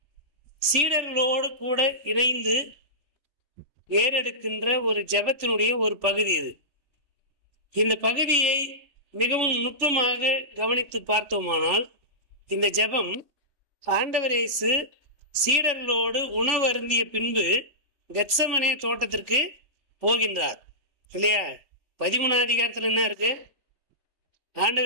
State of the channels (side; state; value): left; late; 3.4 ms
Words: சீடர்களோடு கூட இணைந்து ஏறெடுக்கின்ற ஒரு ஜெபத்தினுடைய ஒரு பகுதி இது. இந்த பகுதியை மிகவும் நுட்பமாக கவனித்து பார்த்தோமானால், இந்த ஜெபம் ஆண்டவர் இயேசு சீடர்களோடு உணவு அருந்திய பின்பு கெத்செமனே தோட்டத்திற்கு போகின்றார் இல்லையா? 13ஆம் அதிகாரத்தில் என்ன இருக்கு?